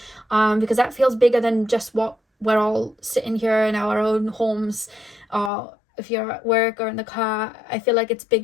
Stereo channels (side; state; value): right; drops out; at 5.5 s